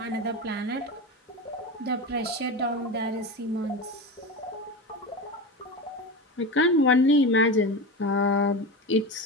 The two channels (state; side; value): normal; both; correlation 0.23